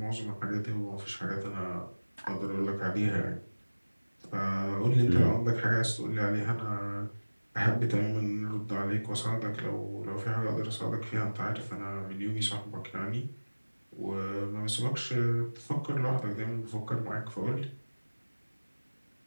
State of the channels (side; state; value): both; inverted; correlation -1.00